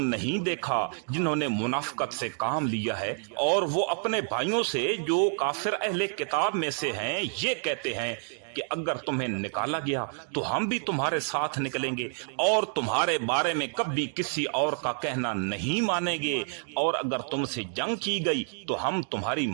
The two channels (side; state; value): left; silent; 59 dB below the other